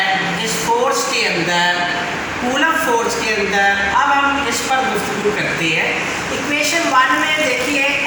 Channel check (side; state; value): both; identical; correlation 1.00